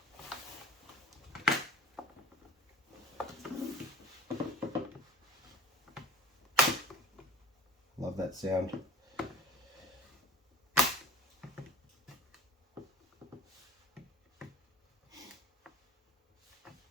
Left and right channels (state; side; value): normal; both; correlation 0.42